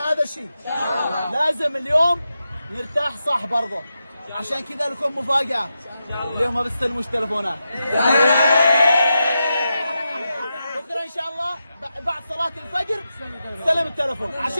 الشيء. لازم اليوم نرتاح صح برضه، عشان كذا لكم مفاجاه اليوم، ما بستلموش تلفونات. بكره ان شاء الله بعد صلاه الفجر استلم التلفون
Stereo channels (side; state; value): both; inverted; correlation -0.88